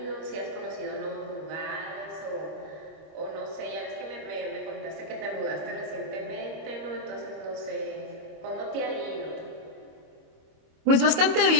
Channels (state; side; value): late; left; 25 ms